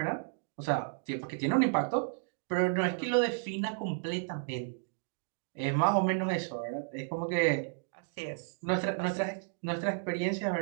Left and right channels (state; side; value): silent; left; digital silence